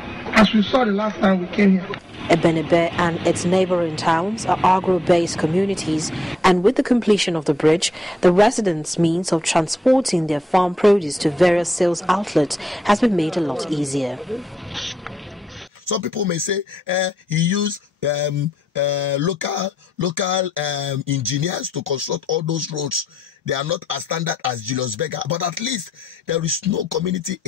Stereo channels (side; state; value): both; normal; correlation 0.80